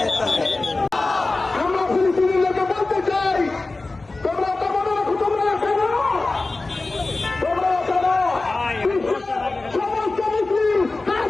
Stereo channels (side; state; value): right; quieter; 3.3 dB